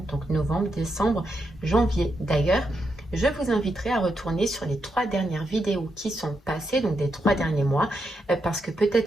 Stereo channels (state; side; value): normal; both; correlation 0.83